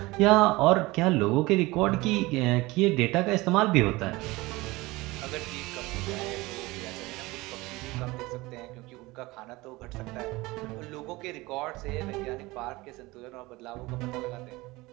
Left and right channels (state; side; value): quieter; left; 21.2 dB